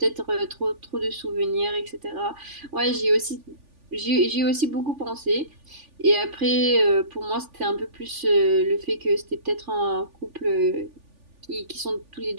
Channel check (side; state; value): left; late; 3.4 ms